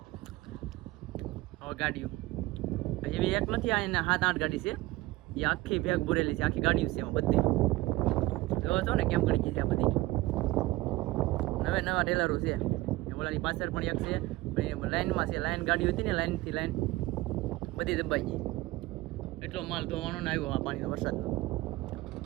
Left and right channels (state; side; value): quieter; left; 19.1 dB